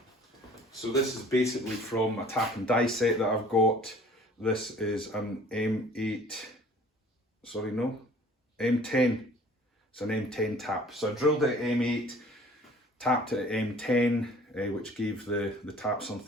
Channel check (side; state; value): both; normal; correlation 0.51